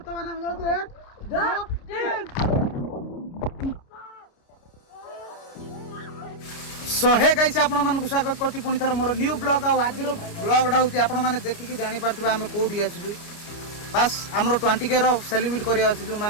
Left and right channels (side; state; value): right; late; 30 ms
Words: हम जाऊ 1 2 3 सो हे गाइस आपण मानक स्वागत करछि पुनी थर मोर न्यू ब्लॉग आ आजिर ब्लॉगडा होछि आपण माने देखि जानि परथिबा हम कोडी आछिजु बस हमरो 20k रो सेलिब्रेट करिया आछिजु